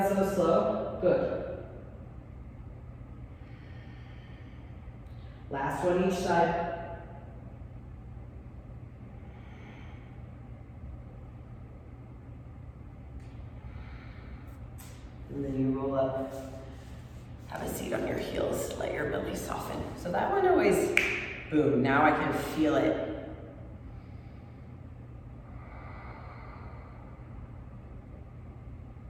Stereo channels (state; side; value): identical; both; correlation 1.00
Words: so slow, good. Last one each side. And then you roll up. Have a seat on your heels, let your belly soften. So that one always, boom, now I can feel it.